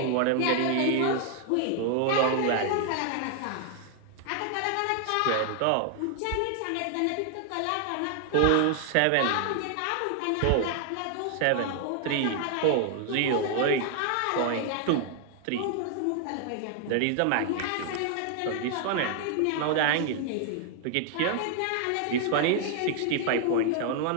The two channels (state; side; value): different; both; correlation 0.00